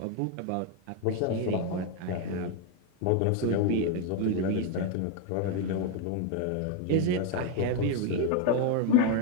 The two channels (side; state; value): both; different; correlation 0.01